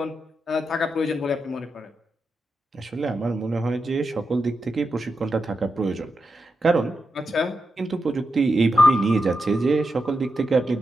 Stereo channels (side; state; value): both; normal; correlation 0.87